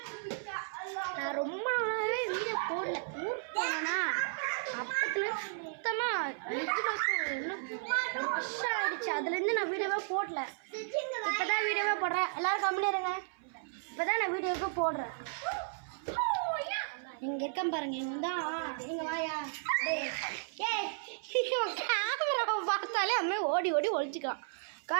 நான் ரொம்ப நாளாகவே வீடியோ போடல. ஊருக்கு போனேன்னா அப்பத்துல சுத்தமாக 5 வருஷம் ஆகிடுச்சு. அதுலேருந்து நான் வீடியோவே போடல. இப்போ தான் வீடியோவே போடுறேன். எல்லோரும் கம்மியாக இருங்க. இப்போ தான் நான் வீடியோவே போடுறேன். இங்கே இருக்கேன் பாருங்க. இவன் தான். நீங்கள் வாயா. கேமராவை பார்த்தாலே அம்மே ஓடி ஒழிச்சிக்கலாம்.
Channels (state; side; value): silent; left; 55 dB below the other